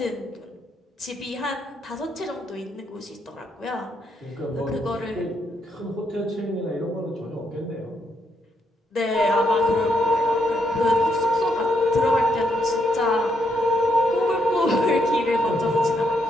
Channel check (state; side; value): normal; both; correlation 0.77